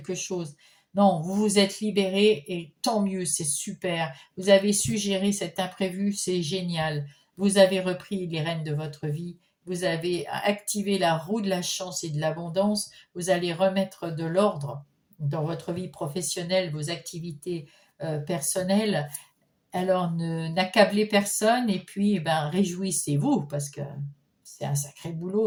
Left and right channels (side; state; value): both; identical; correlation 1.00